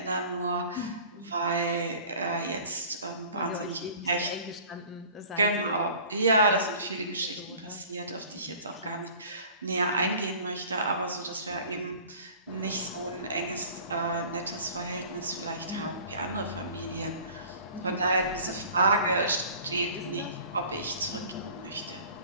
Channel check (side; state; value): both; inverted; correlation -0.46